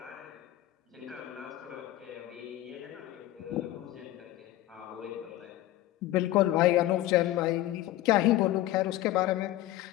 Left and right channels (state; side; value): quieter; right; 15.1 dB